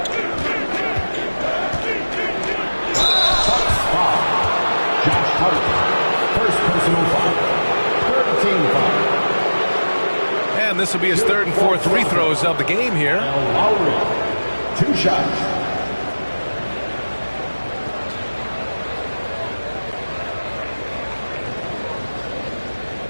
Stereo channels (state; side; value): inverted; both; correlation -1.00